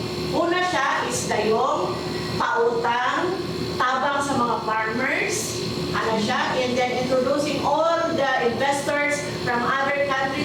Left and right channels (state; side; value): identical; both; correlation 1.00